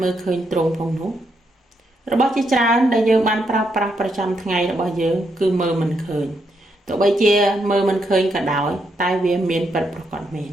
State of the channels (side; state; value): both; normal; correlation 0.79